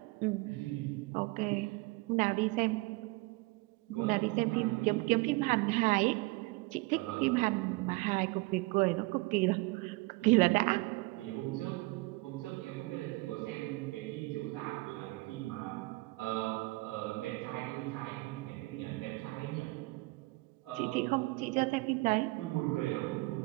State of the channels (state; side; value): quieter; left; 23.4 dB